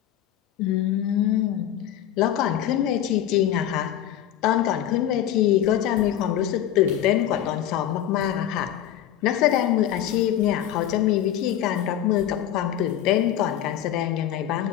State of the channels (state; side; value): quieter; right; 11.1 dB